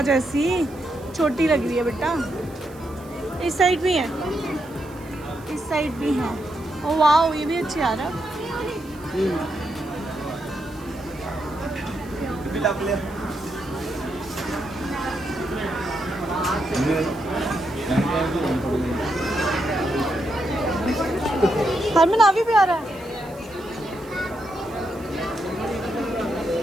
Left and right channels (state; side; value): noise; right; hiss, 24 dB below the sound